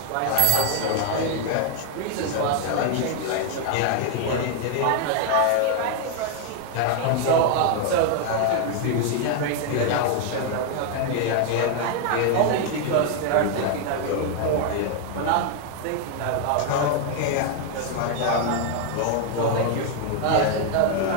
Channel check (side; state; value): both; different; correlation 0.00